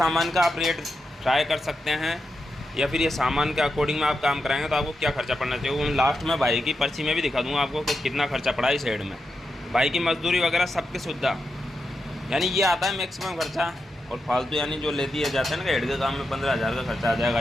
का आप रेट ट्राई कर सकते हैं, या फिर ये सामान के अकॉर्डिंग में आप काम कराएंगे तो आपको क्या खर्चा पड़ना चाहिए। वो लास्ट में भाई की पर्ची में भी दिखा दूँगा आपको कि कितना खर्चा पड़ा इस हेड में। भाई की मजदूरी वगैरह सबकी सुविधा, यानी ये आता है मैक्सिमम खर्चा। और फालतू यानी जो ले दिए जाते हैं ना हेड के काम में 15,000 का खर्चा आ जाएगा,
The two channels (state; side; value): normal; both; correlation 0.87